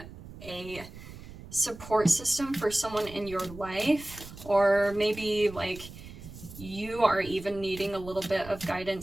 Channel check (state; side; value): noise; right; rumble, 15 dB below the sound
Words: a support system for someone in your life, or maybe like you are even needing a little bit of